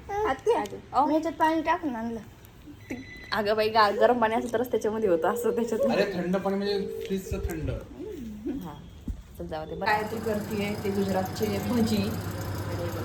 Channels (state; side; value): identical; both; correlation 1.00